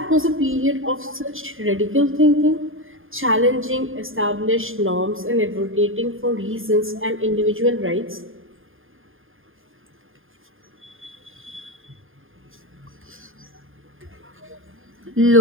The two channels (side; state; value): left; late; 0.59 ms